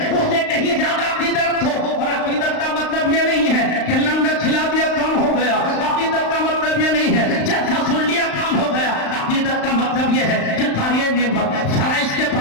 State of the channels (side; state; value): right; late; 35 ms